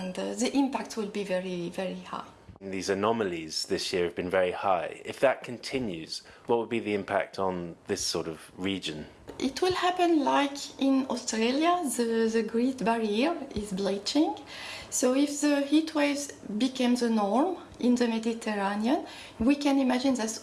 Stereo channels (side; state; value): both; identical; correlation 1.00